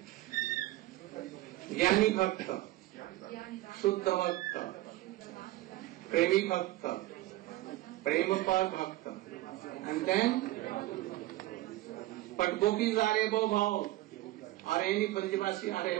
Jnani Bhakta, Shuddha Bhakta, Premi Bhakta, Premapar Bhakta, and then but gopis are above all, or any Brajavasi are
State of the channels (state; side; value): quieter; left; 17.0 dB